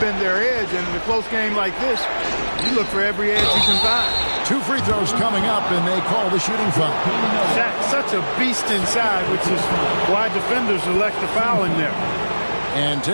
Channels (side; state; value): both; inverted; correlation -1.00